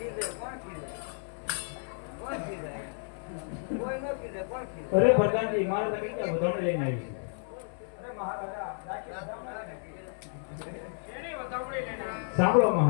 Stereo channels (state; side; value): silent; right; 57 dB below the other